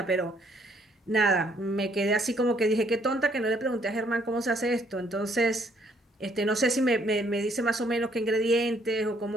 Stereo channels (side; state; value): both; normal; correlation 0.66